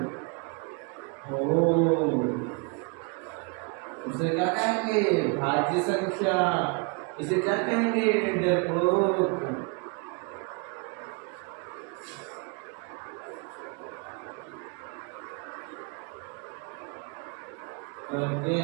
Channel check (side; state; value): left; quieter; 32.7 dB